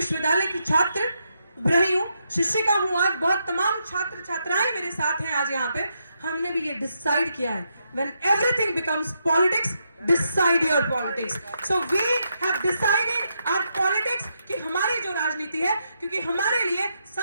की छात्र रही हूँ, शिक्षिका हूँ, आज बहुत तमाम छात्र छात्राएं मेरे साथ हैं आज यहाँ पे, हमने भी ये डिसाइड किया है, when everything becomes politics, decide your politics. So we have decided our politics कि हमारी जो राजनीति है, क्योंकि हमारे लिए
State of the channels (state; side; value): inverted; both; correlation -0.81